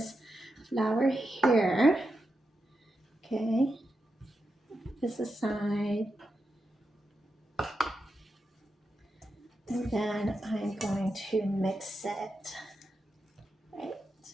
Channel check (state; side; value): normal; both; correlation 0.87